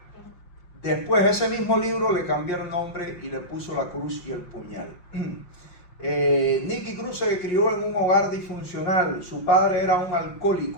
Después ese mismo libro le cambiaron nombre y le puso La cruz y el puñal. Nicky Cruz se crió en un hogar disfuncional. Su padre era un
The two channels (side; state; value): right; late; 5.6 ms